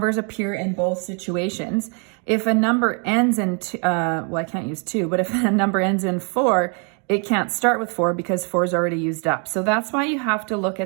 appear in both situations, if a number ends in, well, I can't use 2, but if a number ends in 4, it can't start with 4 because 4 is already used up. So that's why you have to look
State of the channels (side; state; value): left; quieter; 37.2 dB